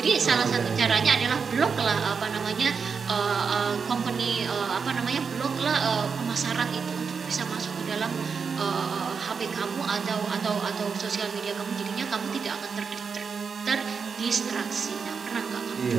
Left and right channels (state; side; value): quieter; left; 5.7 dB